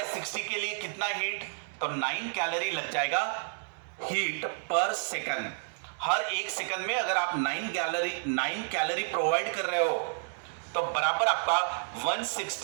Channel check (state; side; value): silent; left; digital silence